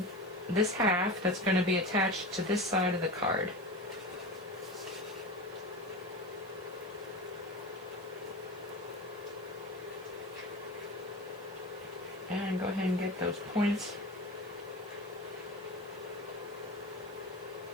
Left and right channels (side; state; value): left; noise; hiss, 26 dB below the sound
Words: this half that's going to be attached to this side of the card. And go ahead and get those points.